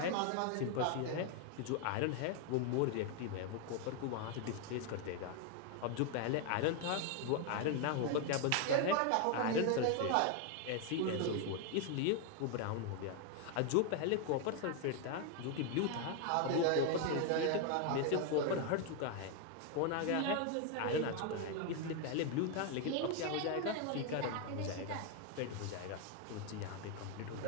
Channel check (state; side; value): different; both; correlation 0.01